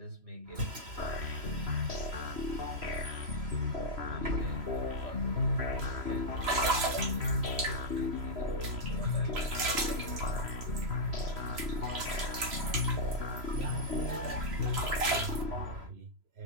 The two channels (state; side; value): late; left; 3.0 ms